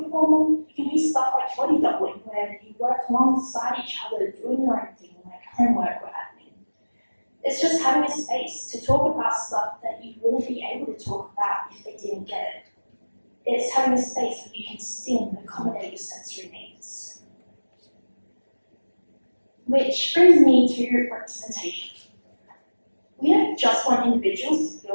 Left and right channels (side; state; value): both; inverted; correlation -1.00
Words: formal. It can be stuff like body doubling, where you work alongside each other doing your own thing, like homework or admin. It's just having a space to talk about stuff that you wouldn't be able to talk about if they didn't get it. It's having a space where you can stim and accommodate your sensory needs. Which brings me to representation. We don't just want individuals to